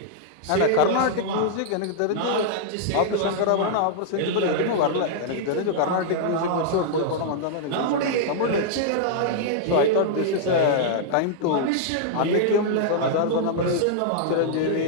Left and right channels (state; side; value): different; both; correlation -0.01